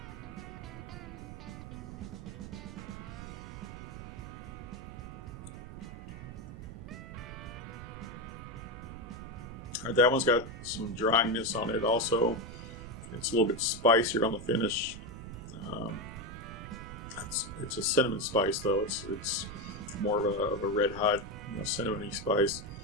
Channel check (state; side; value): noise; right; rumble, 11 dB below the sound